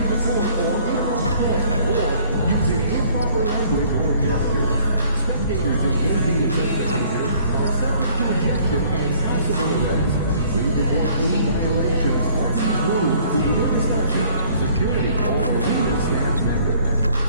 the court or interrupt play, or using improper language or gestures. Spectators engaging in such behavior are subject to ejection and possible arrest. Please report any violations of these rules to the infrastructure, security, or arena staff member.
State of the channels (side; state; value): both; inverted; correlation -0.58